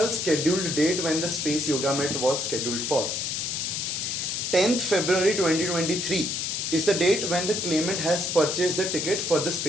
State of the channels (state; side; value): noise; left; hiss, 2 dB below the sound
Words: scheduled date when the Space Yoga Met was scheduled for. 10th February 2023 is the date when the claimant has purchased the ticket for the